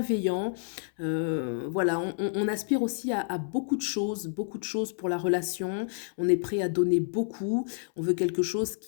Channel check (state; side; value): silent; right; 58 dB below the other